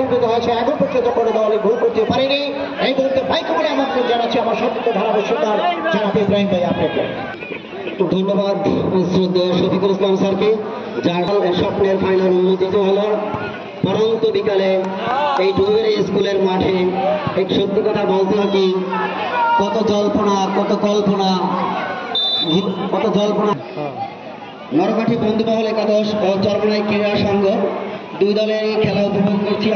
উন্নত হয়েছে, এখন পর্যন্ত কোনো দলই গোল করতে পারেনি। এই মুহূর্তে বাইক করে আমাকে জানাচ্ছি আমার সত্য ধারাভাষ্যকার জনাব ইব্রাহিম ভাই আপনাকে ধন্যবাদ শ্রদ্ধেয় শফিকুল ইসলাম স্যারকে, যার স্বপ্নের ফাইনাল উন্মোচিত হলো পরন্ত বিকালে এই টুঙ্গিবাড়ি স্কুলের মাঠে। এক সত্যি কথা বলতে কি, কত জল্পনা কত কল্পনা কত জল্পনা। নরকাঠি বন্ধুমহল একাদশ ও চরমনাই ক্রীড়া সংঘ দুই দলের খেলা উপভোগ করছি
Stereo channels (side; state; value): both; identical; correlation 1.00